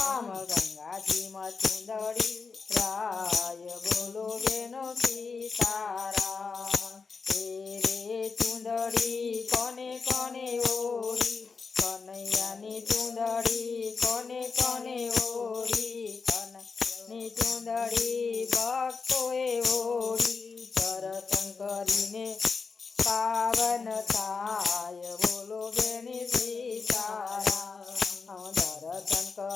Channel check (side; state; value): right; quieter; 4.9 dB